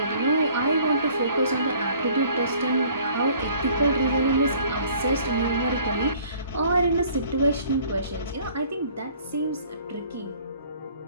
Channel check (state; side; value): inverted; both; correlation -0.55